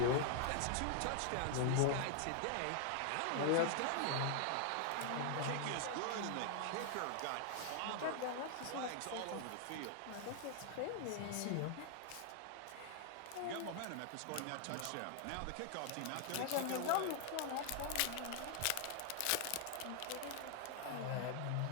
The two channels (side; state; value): both; different; correlation 0.00